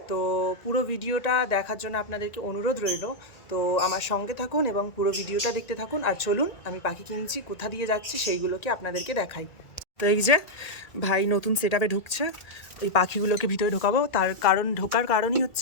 তো পুরো ভিডিওটা দেখার জন্য আপনাদেরকে অনুরোধ রইল। তো আমার সঙ্গে থাকুন এবং পুরো ভিডিওটা দেখতে থাকুন। আর চলুন আমি পাখি কিনছি, কোথা দিয়ে যাচ্ছি সেইগুলোকে আপনাদেরকে দেখাই। তো এই যে ভাই নতুন সেট আপে ঢুকছে, এই পাখিগুলোকে ভিতরে ঢোকাবো। ঢোকার কারণই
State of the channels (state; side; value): late; right; 1.9 ms